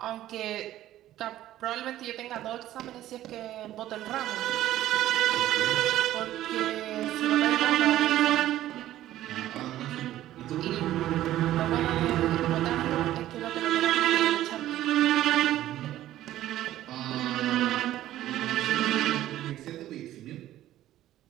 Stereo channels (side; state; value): left; quieter; 13.7 dB